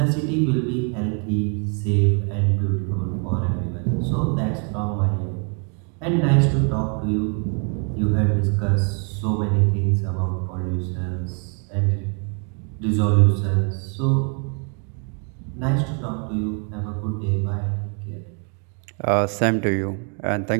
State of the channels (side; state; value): left; quieter; 39.2 dB